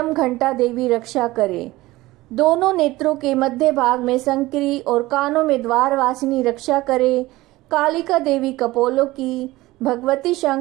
घंटा देवी रक्षा करे। दोनों नेत्रों के मध्य भाग में संकरी और कानों में द्वारवासिनी रक्षा करे। कालिका देवी कपोलों की, भगवती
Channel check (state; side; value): quieter; left; 18.7 dB